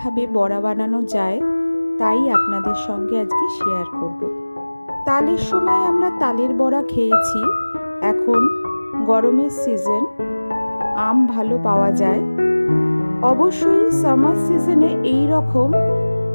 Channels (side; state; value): both; inverted; correlation -1.00